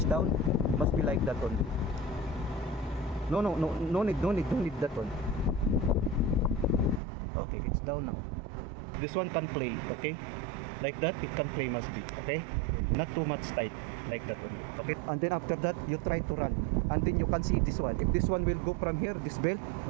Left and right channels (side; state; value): left; drops out; at 7.0 s